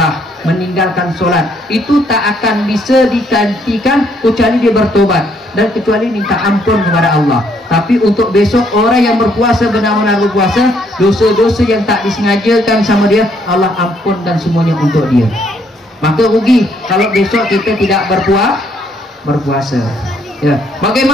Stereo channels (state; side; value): normal; both; correlation 0.69